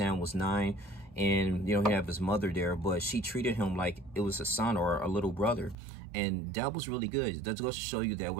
was 9. And, you know, he have his mother there, but she treated him like it was a son or a little brother. And that was really good. That goes to show you that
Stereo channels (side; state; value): left; drops out; at 5.8 s